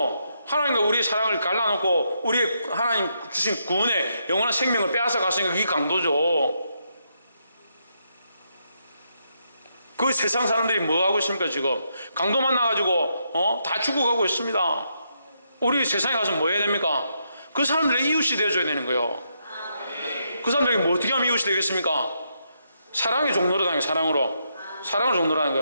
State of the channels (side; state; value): both; inverted; correlation -0.79